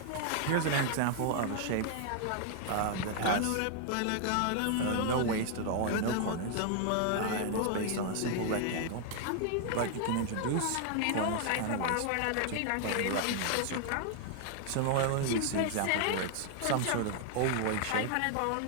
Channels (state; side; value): different; both; correlation 0.00